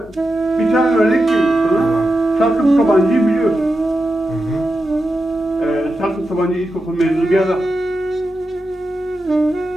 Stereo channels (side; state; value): both; normal; correlation 0.89